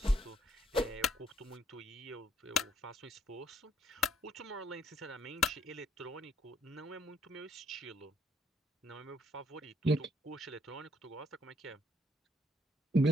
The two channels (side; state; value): both; normal; correlation 0.70